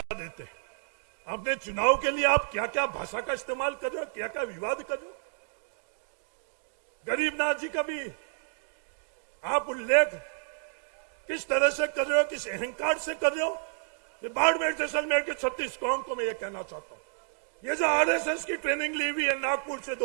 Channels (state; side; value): silent; left; digital silence